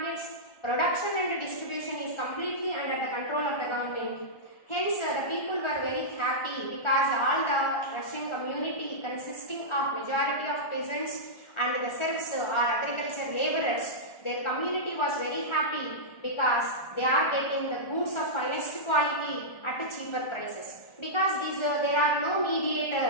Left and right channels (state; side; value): late; right; 1.4 ms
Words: Production and distribution is completely under the control of the government. Hence, the people were very happy because all the Russian community consisting of majority of peasants and the serfs or agriculture laborers, their community was very happy because they are getting the goods of finest quality at a cheaper prices. Because there are no